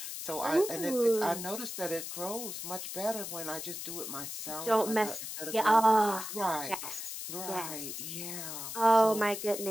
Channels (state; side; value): noise; left; hiss, 7 dB below the sound